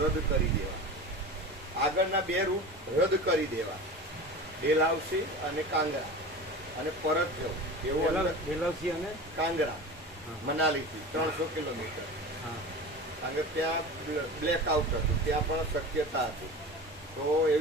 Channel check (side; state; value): both; normal; correlation 0.33